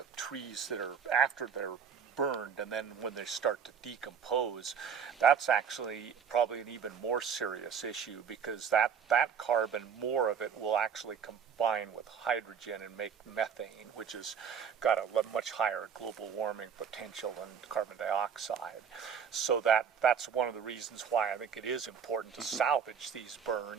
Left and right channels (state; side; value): quieter; left; 7.0 dB